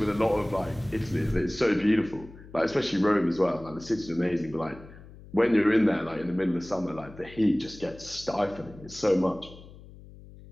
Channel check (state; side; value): noise; left; hum, 19 dB below the sound